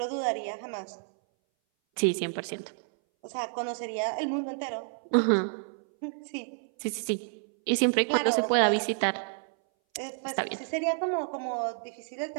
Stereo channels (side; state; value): left; silent; 58 dB below the other